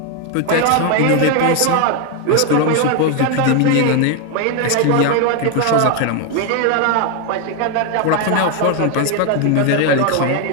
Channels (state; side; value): different; both; correlation 0.01